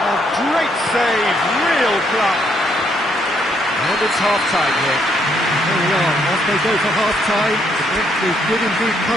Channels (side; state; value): both; normal; correlation 0.72